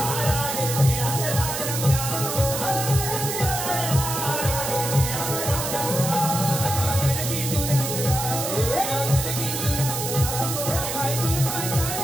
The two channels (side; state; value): right; noise; hiss, 3 dB below the sound